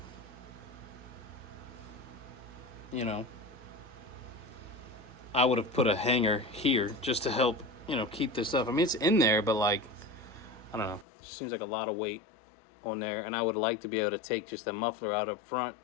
You know, I would have put a hanger here just to help, you know, keep this up. I mean, it's in there, but like, I don't know, it seems like a lot of weight on there, and I would like to be able to take just the muffler out up front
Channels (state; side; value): drops out; right; at 11.1 s